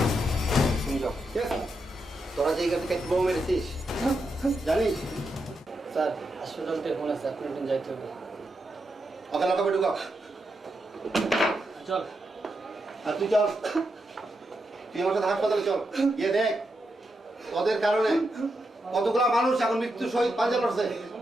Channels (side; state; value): both; normal; correlation 0.84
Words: তোরা যে থেকে বোমা মেরেছিস জানিস স্যার হাসপাতাল থেকে ফোন আছে আপনি একদিন যাইতে হবে ওকে লকাপে ঢুকাও চল আর তুই চল তুই আমার সাথে হাসপাতালে চল গিয়ে দেখ তোদের কারণে কতগুলা মানুষ এখন মৃত্যু সহিত পাঞ্জা লড়ছে